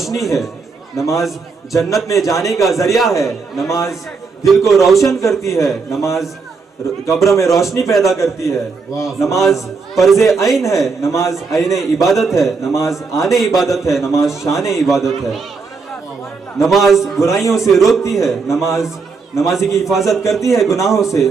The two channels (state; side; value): quieter; left; 4.7 dB